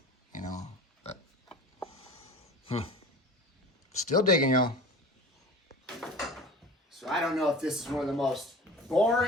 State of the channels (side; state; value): both; normal; correlation 0.38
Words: you know. But still digging, y'all. So I don't know if this is one of the most